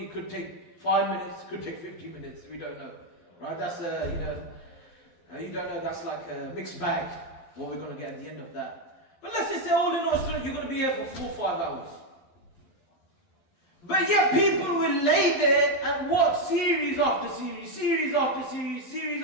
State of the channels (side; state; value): right; late; 11 ms